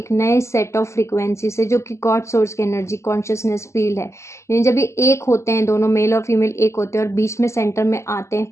नए सेट ऑफ फ्रीक्वेंसी से, जो कि गॉड सोर्स की एनर्जी कॉन्शियसनेस फील्ड है। यानी जब ये एक होते हैं, दोनों मेल और फीमेल एक होते हैं और बीच में सेंटर में आते हैं,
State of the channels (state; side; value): late; right; 0.13 ms